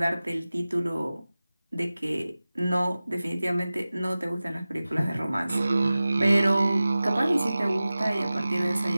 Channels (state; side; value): inverted; both; correlation -0.97